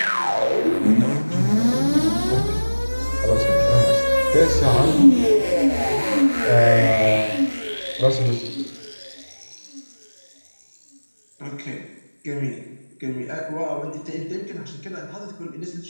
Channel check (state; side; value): inverted; both; correlation -1.00